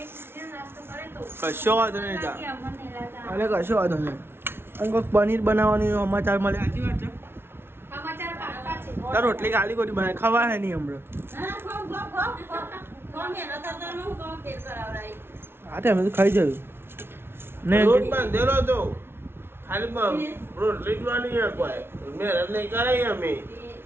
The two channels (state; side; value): late; left; 0.12 ms